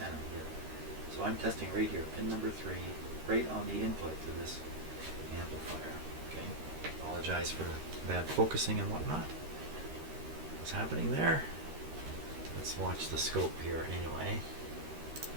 here. So I'm testing right here, pin number 3, right on the input to this amplifier. Okay, apologize for the bad focusing and whatnot. What's happening there? Let's watch the scope here anyway.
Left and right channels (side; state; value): left; late; 13 ms